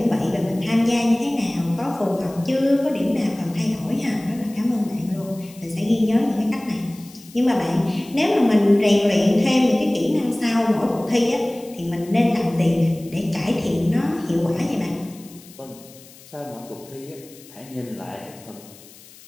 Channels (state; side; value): noise; left; hiss, 22 dB below the sound